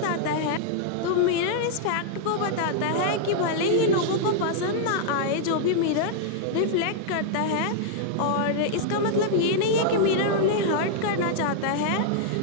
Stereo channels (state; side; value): different; both; correlation -0.01